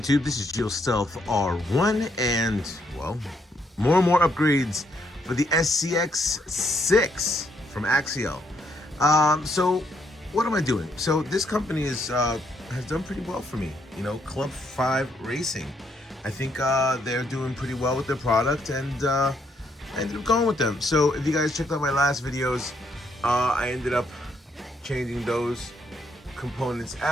This is AXIAL Stealth R1, and, well, more and more upgrades for the SCX6 from Axial. So, what am I doing? So, this company has done pretty well for me. You know, Club5Racing. I think they're doing pretty well with their product, and I ended up going with them. So, if you guys checked out my last videos, I ended up changing those components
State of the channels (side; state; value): both; normal; correlation 0.73